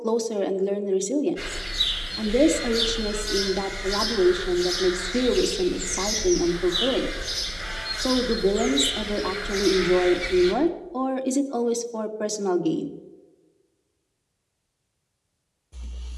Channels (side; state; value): both; identical; correlation 1.00